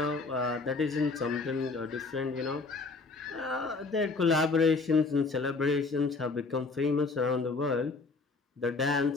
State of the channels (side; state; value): right; quieter; 3.9 dB